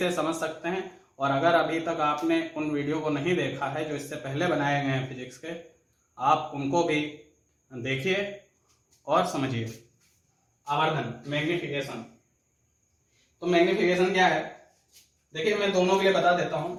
समझ सकते हैं, और अगर अभी तक आपने उन वीडियो को नहीं देखा है जो इससे पहले बनाए गए हैं फिजिक्स के, आप उनको भी देखिए और समझिए। आवर्धन, मैग्निफिकेशन। तो मैग्निफिकेशन क्या है, देखिए मैं दोनों के लिए बता देता हूं।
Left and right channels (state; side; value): identical; both; correlation 1.00